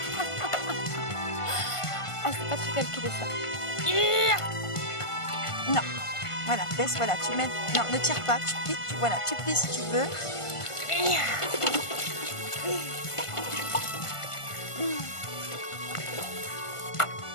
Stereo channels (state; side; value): late; right; 1.5 ms